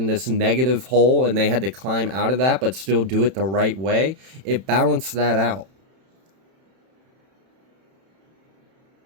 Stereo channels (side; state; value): left; late; 31 ms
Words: this negative hole and they had to climb out of that but still do it the right way. It balanced that out.